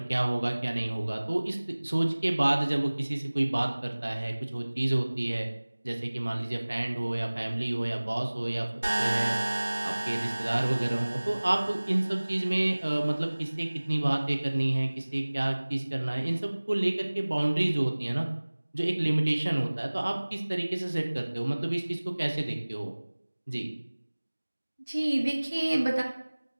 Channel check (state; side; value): inverted; both; correlation -1.00